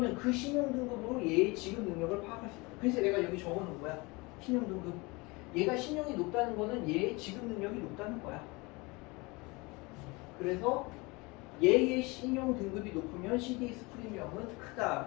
그 신용 등급으로 얘의 지급 능력을 파악할 수 있어. 그래서 내가 여기 적어놓은 거야. 신용 등급. 얘가 신용이 높다는 거는 얘의 지급 능력이 높다는 거야. 그래서 얘의 신용 등급이 높으면 CDS 프리미엄은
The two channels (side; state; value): right; quieter; 25.4 dB